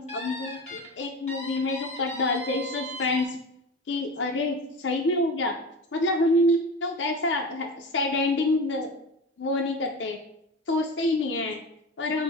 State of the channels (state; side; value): normal; both; correlation 0.29